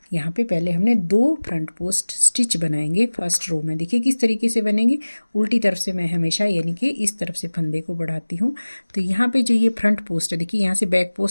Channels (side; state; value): both; inverted; correlation -1.00